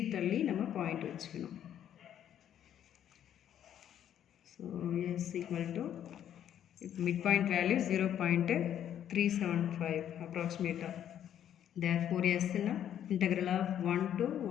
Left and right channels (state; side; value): quieter; right; 10.2 dB